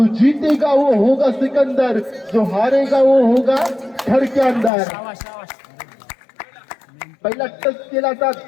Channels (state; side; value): drops out; right; at 4.7 s